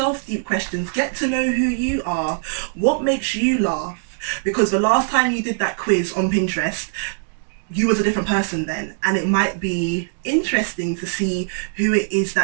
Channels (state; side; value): silent; left; 65 dB below the other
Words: deep questions, get to know who you are, what makes you laugh, because the last time you did that quiz on Pinterest, you was a different person then, and it might be interesting to see who it is